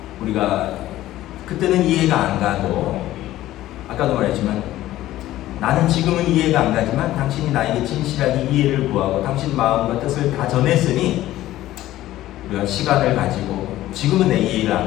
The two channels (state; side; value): quieter; right; 14.8 dB